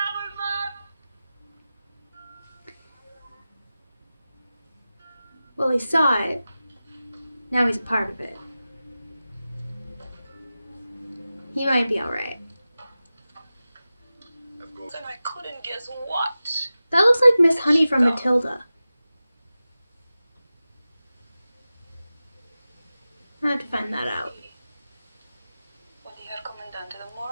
Well, he saw it. Now he's a part of it. He might be alright. And I couldn't guess what. That looks like Miss Honey from Matilda. I have to find that out. When you are Commandante, the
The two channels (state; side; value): inverted; both; correlation -0.95